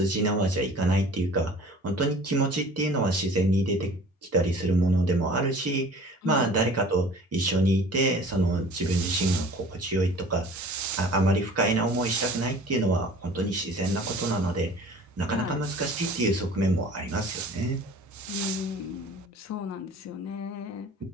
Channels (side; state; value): both; normal; correlation 0.46